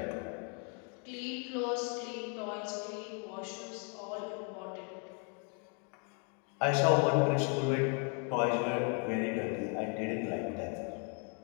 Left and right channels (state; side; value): quieter; right; 39.1 dB